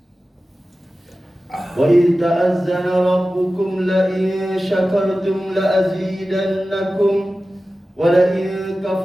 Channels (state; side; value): normal; both; correlation 0.95